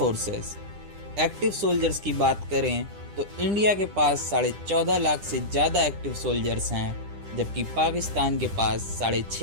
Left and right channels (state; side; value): late; left; 10 ms